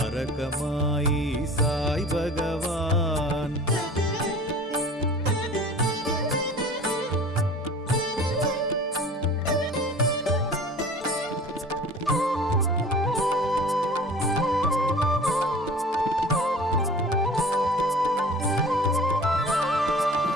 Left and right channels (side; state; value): both; normal; correlation 0.44